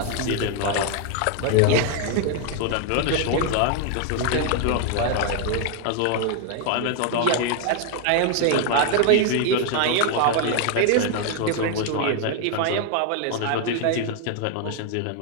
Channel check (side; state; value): both; different; correlation 0.00